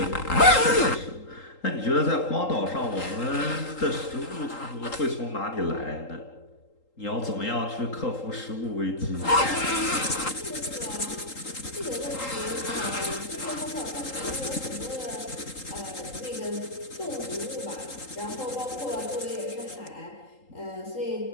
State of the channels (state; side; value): late; right; 3.8 ms